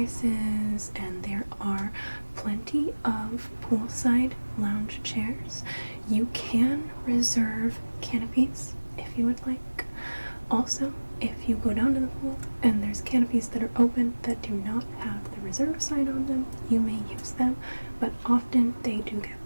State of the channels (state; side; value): inverted; both; correlation -1.00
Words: and there are plenty of poolside lounge chairs. You can reserve canopies if you would like. Also, if you go down to the pool and there's canopies that are open that do not have the reserve sign on them, you may use them, but often they do get